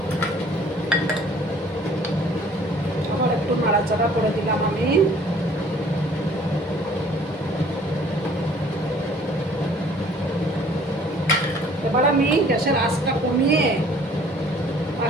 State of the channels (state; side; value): normal; both; correlation 0.55